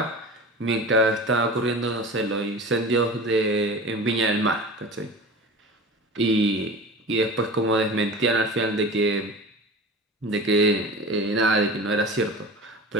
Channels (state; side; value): normal; both; correlation 0.35